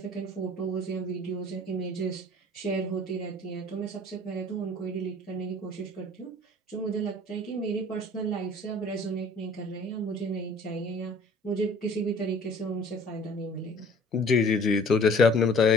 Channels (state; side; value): normal; both; correlation 0.50